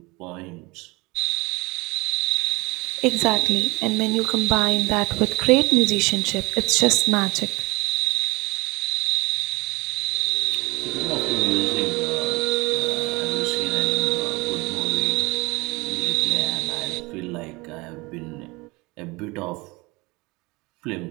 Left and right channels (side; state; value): left; quieter; 24.3 dB